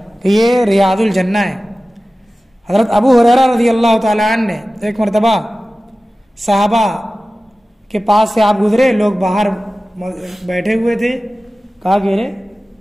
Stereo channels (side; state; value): both; normal; correlation 0.96